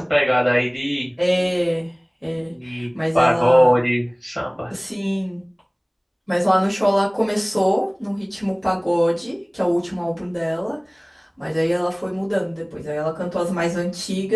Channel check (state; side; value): identical; both; correlation 1.00